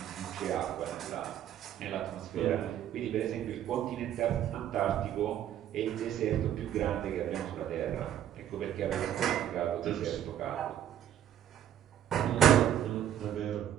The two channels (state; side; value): quieter; left; 10.8 dB